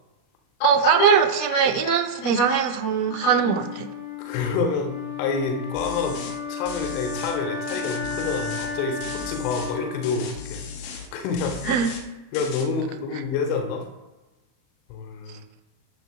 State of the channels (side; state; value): right; late; 38 ms